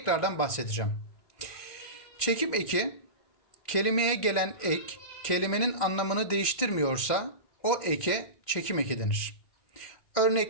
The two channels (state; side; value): late; right; 2.1 ms